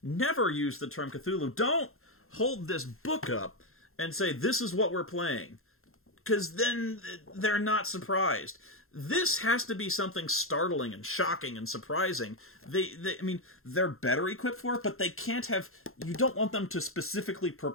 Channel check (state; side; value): late; right; 0.61 ms